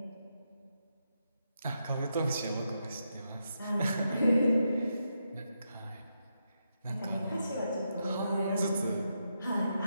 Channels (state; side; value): inverted; both; correlation -0.83